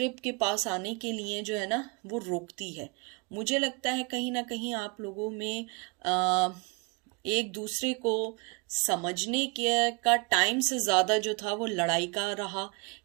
के पास आने के लिए जो है ना वो रोकती है। मुझे लगता है कहीं ना कहीं आप लोगों में एक दूसरे को समझने के का टाइम से ज़्यादा जो था वो लड़ाई का रहा,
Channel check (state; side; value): quieter; left; 29.7 dB